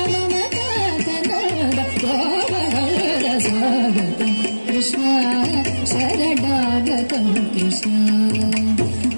मम कान्तनन्द गोपकन्द स्वागतं कृष्ण शरणागतं कृष्ण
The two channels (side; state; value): both; inverted; correlation -1.00